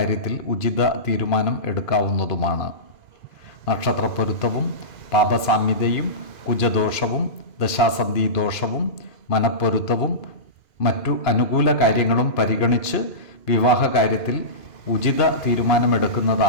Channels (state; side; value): late; right; 2.5 ms